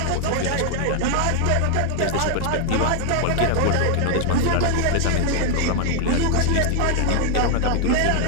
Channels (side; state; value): both; different; correlation 0.00